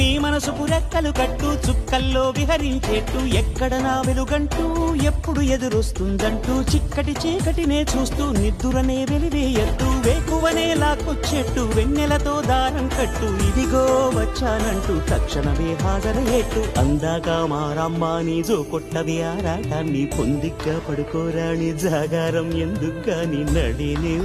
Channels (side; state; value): both; identical; correlation 1.00